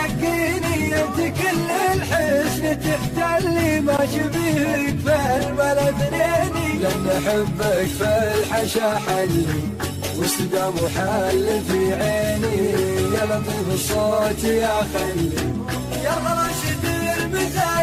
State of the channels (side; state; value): both; identical; correlation 1.00